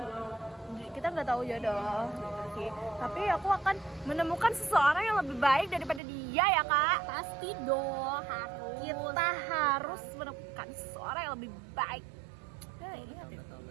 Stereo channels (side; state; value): left; drops out; at 6.0 s